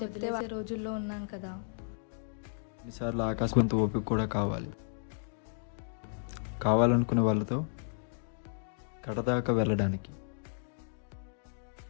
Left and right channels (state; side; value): silent; right; digital silence